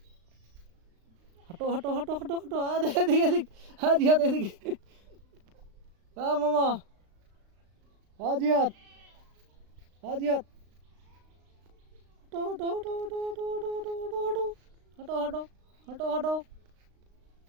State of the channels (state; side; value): late; left; 36 ms